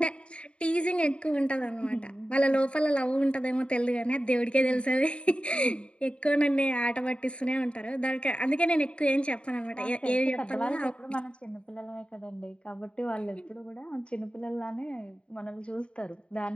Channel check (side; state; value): right; late; 0.057 ms